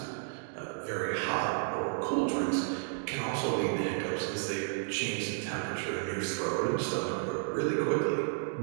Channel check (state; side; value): silent; left; digital silence